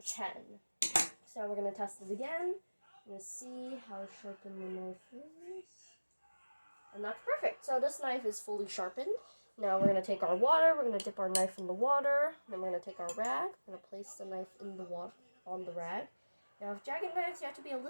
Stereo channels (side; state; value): both; inverted; correlation -1.00